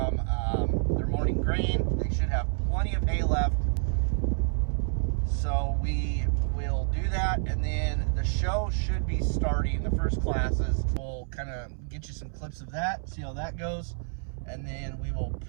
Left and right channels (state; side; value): silent; left; 59 dB below the other